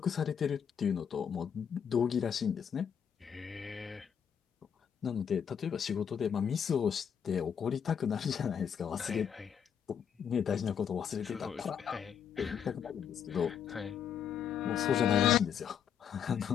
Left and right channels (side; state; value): right; quieter; 7.9 dB